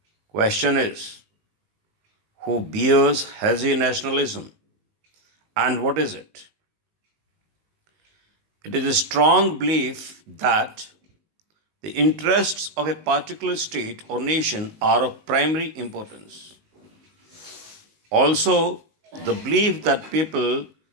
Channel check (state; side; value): late; left; 19 ms